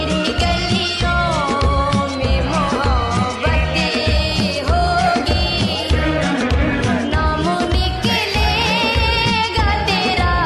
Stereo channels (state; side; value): identical; both; correlation 1.00